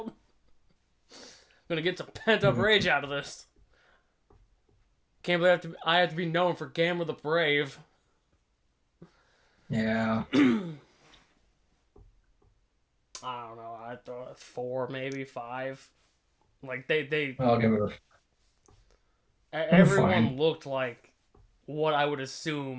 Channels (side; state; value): both; identical; correlation 1.00